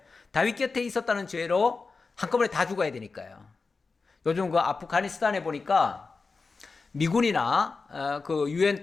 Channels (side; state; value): right; quieter; 4.3 dB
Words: 다윗 곁에 있었다는 죄로 한꺼번에 다 죽어야 되니까요. 요즘 그 아프가니스탄에 보니까 미군이나 그 유엔